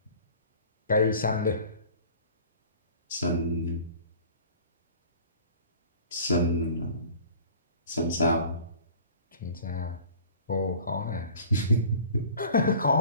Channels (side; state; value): both; inverted; correlation -0.46